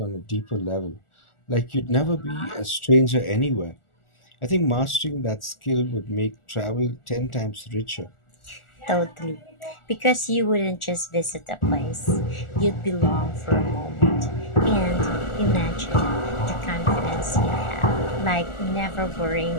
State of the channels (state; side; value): late; right; 1.4 ms